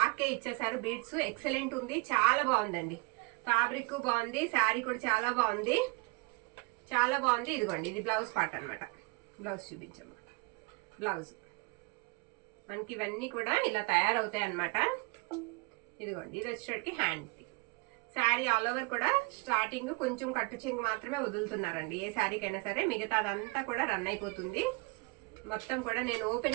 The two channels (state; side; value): quieter; left; 28.3 dB